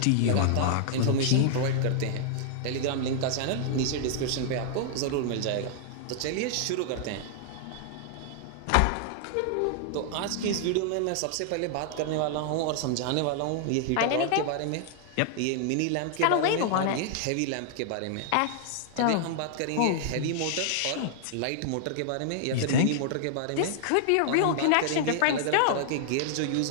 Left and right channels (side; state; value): both; different; correlation -0.01